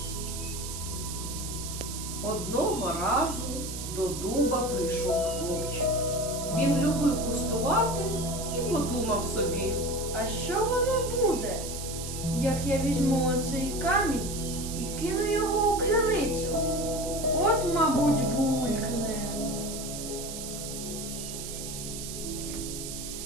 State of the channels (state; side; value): noise; right; hiss, 8 dB below the sound